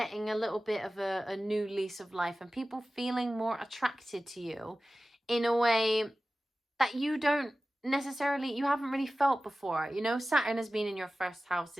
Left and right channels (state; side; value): normal; both; correlation 0.96